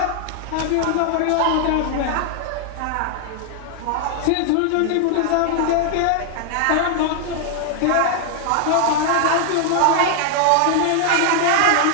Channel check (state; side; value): different; both; correlation 0.00